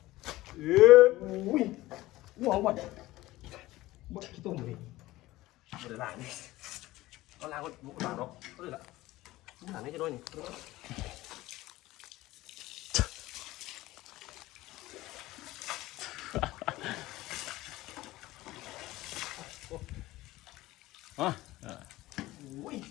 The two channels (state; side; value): quieter; right; 17.7 dB